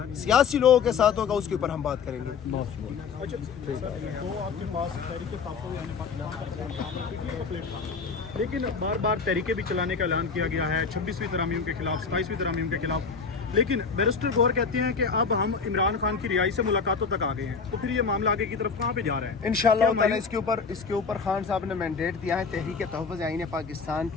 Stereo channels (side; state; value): right; quieter; 5.4 dB